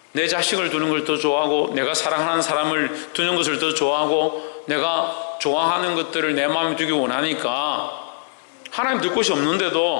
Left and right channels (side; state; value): right; silent; 63 dB below the other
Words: 내 자식을 두는 걸 더 좋아하고 내가 사랑하는 사람을 두는 것을 더 좋아하고 내가 좋아하는 것들을 내 마음에 두기 원하니까 하나님 둘 곳이